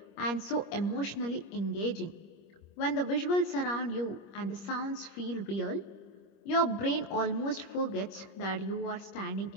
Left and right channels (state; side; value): late; right; 25 ms